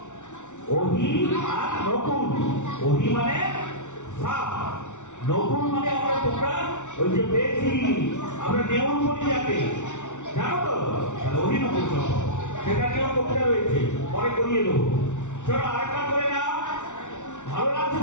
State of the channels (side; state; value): right; late; 0.85 ms